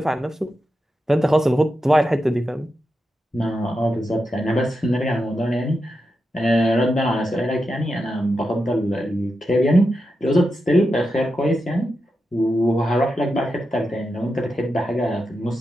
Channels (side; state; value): both; normal; correlation 0.88